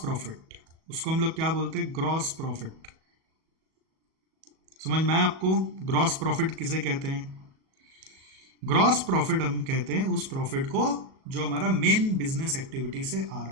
उसको हम लोग क्या बोलते हैं? Gross profit. समझ में आया आपको? ग्रॉस प्रॉफिट किसे कहते हैं? ग्रॉस प्रॉफिट हम कहते हैं उस प्रॉफिट को जो हमारा मेन बिजनेस एक्टिविटी से आ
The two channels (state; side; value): late; left; 37 ms